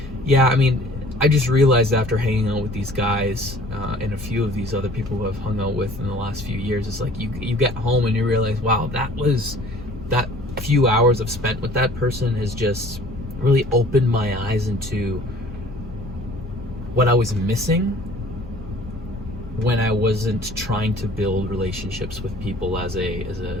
yeah, I mean, I just realized after hanging out with these guys and a few of these other people who I've hung out with in the last few years, it's like you get home and you realize, wow, that few hours I've spent with that person has just really opened my eyes into what I was missing when I wasn't trying to build relationships with people as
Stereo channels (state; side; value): normal; both; correlation 0.51